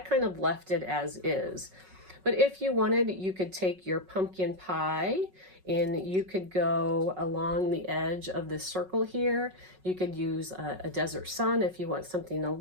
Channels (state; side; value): late; left; 5.4 ms